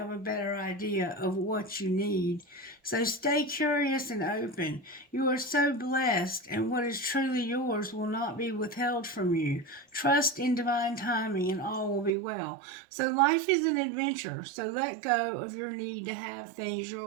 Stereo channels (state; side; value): drops out; left; at 12.1 s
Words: a better idea of what you need. So stay curious and open. You are so blessed, and what is truly yours will not be withheld from you. Trust in divine timing, and all will be well. So life is an adventure, so let go of your need to have things